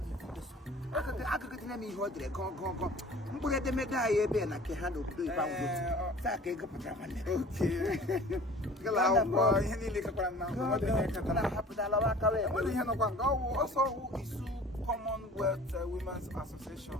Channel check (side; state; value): both; normal; correlation 0.45